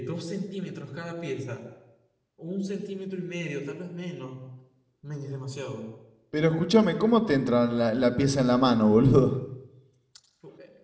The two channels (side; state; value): both; identical; correlation 1.00